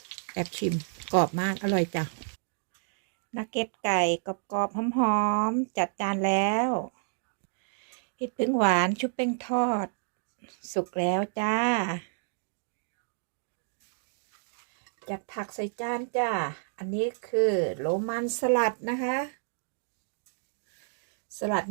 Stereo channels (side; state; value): left; silent; digital silence